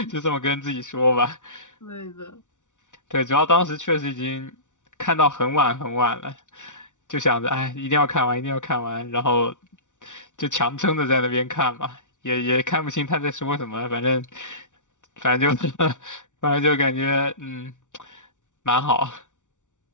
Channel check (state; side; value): late; right; 0.86 ms